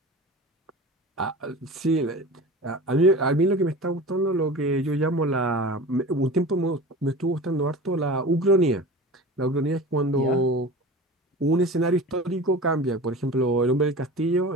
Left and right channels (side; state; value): both; normal; correlation 0.35